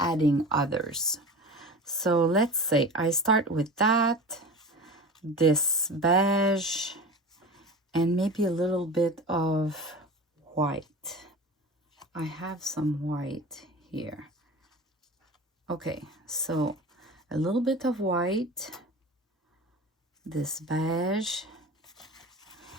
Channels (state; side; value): normal; both; correlation 0.34